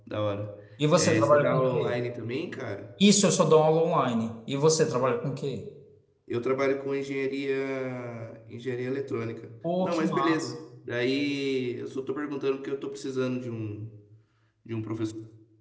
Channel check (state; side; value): identical; both; correlation 1.00